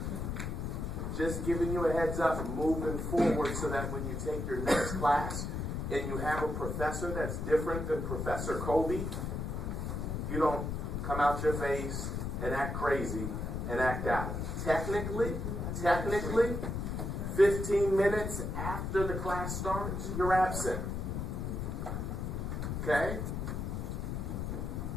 Just giving you a heads up, moving forward so that when you take your next class and you have a professor that's different than Professor Kobe, you don't come out your face and act crazy and act out. Technically, 15 minutes after the class starts, you're absent. Okay?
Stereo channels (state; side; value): noise; left; rumble, 3 dB below the sound